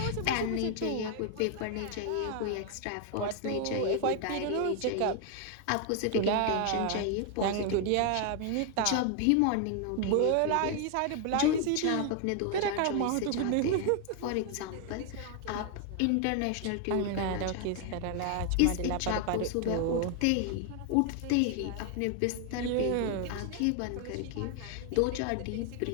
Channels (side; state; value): both; different; correlation 0.00